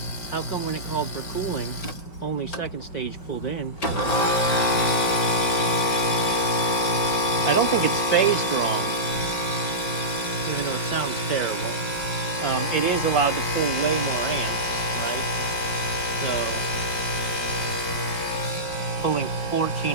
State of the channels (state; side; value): late; right; 4.8 ms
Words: How come when it called for cooling, only second stage pulled in? I don't think it's phased wrong, even though it sounds terrible. It is allowed to pull way more amps, right? So pulling